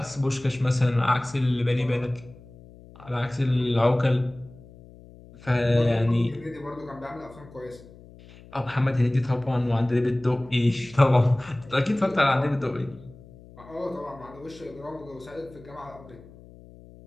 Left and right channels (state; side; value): noise; left; hum, 21 dB below the sound